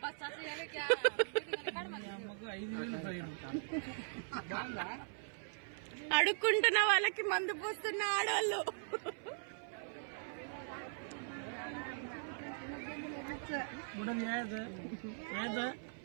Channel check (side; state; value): left; silent; 51 dB below the other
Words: అడుక్కుంటున్న వాళ్ళకి మందు పోస్తున్న ఆడవాళ్ళు.